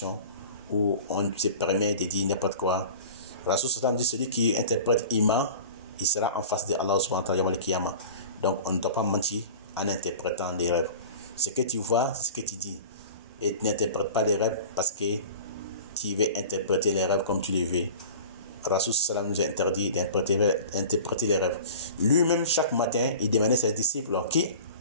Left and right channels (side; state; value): both; inverted; correlation -0.39